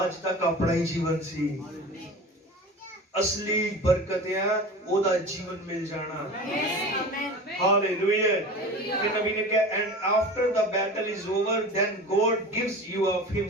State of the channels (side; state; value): both; normal; correlation 0.34